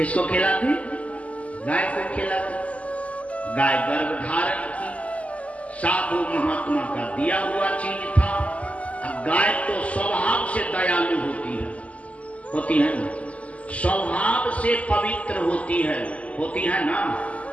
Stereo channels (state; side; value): late; right; 0.067 ms